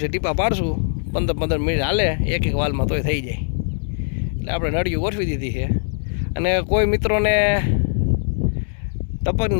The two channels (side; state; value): right; silent; digital silence